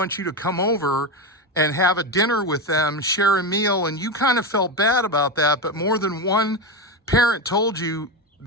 you to come over and have a dinner with them, share a meal, and you kind of felt bad about that, but more than one parent told you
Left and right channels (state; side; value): normal; both; correlation 0.15